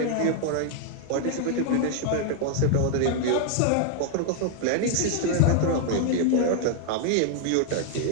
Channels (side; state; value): both; different; correlation 0.00